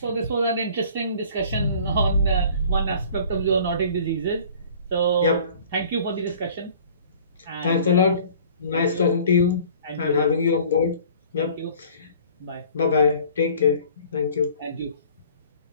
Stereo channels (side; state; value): both; inverted; correlation -0.50